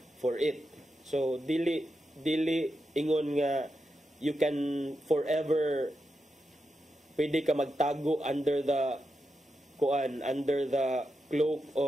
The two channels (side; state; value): both; normal; correlation 0.87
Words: for it. So dili ingon nga you can forever pwede ka magtago under the cloak